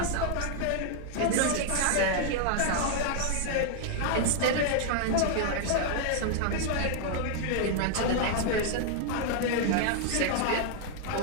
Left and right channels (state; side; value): different; both; correlation 0.00